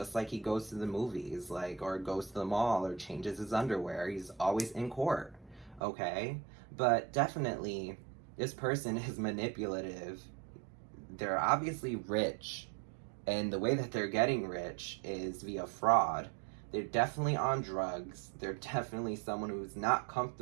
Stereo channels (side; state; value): left; drops out; at 5.8 s